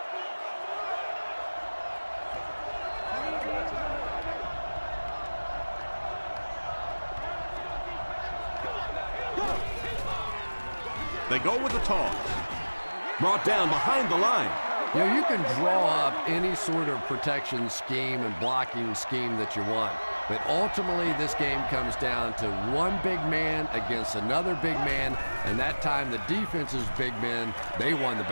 They go with the toss. Brought down behind the line. You know, you can draw up any sort of protection scheme and blocking scheme that you want. But ultimately, this game comes down to one big man against another big man, and that time the defense's big men, they won the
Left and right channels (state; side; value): inverted; both; correlation -1.00